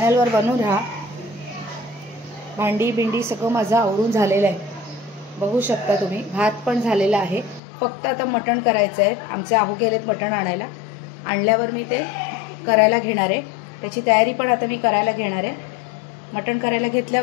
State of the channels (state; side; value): drops out; right; at 7.6 s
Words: बनून राहा। भांडी बिंडी सगळं माझं आवरून झालेलं आहे, बघू शकता तुम्ही। भात पण झालेला आहे, फक्त आता मटण करायचं आहे। आमचे आहू गेलेत मटण आणायला, आणल्यावर मी ते करायला घेणार आहे। त्याची तयारी पण आता मी करायला घेणार आहे। मटण करायला